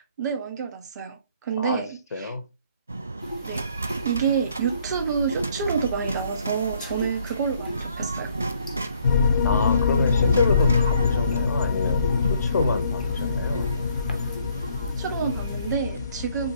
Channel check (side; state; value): both; inverted; correlation -0.65